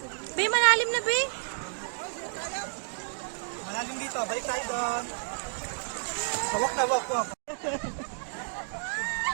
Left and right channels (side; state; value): left; silent; digital silence